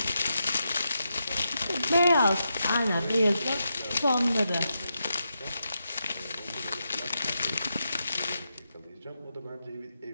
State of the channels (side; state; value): both; inverted; correlation -0.86